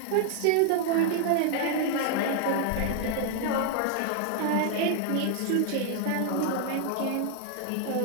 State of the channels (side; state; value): both; different; correlation 0.00